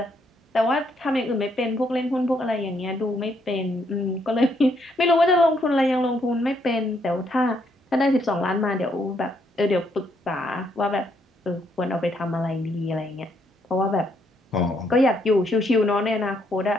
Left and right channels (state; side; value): normal; both; correlation 0.73